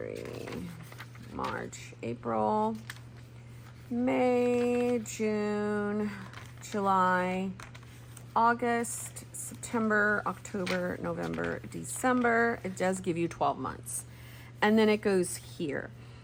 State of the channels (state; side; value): identical; both; correlation 1.00